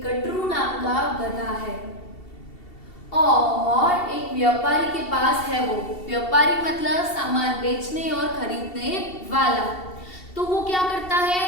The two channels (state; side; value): late; right; 2.7 ms